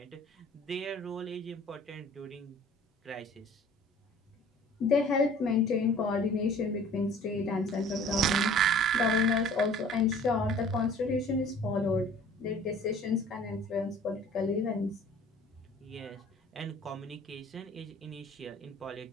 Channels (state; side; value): normal; both; correlation 0.50